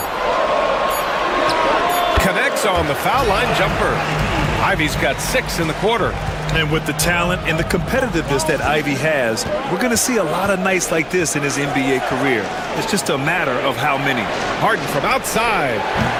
Connects on the foul line jumper. Ivy's got 6 in the quarter. And with the talent and the competitiveness that Ivy has, we're going to see a lot of nights like this in his NBA career. It's just a matter of how many. Harden from outside.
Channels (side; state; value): both; identical; correlation 1.00